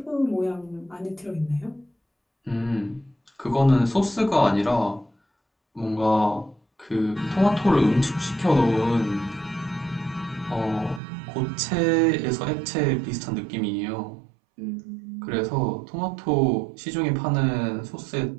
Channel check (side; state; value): left; drops out; at 11.0 s